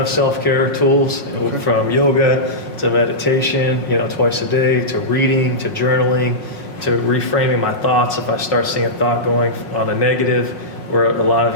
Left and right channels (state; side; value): late; right; 5.5 ms